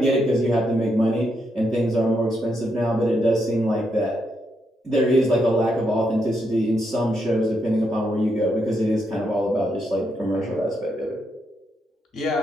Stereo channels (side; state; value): both; normal; correlation 0.80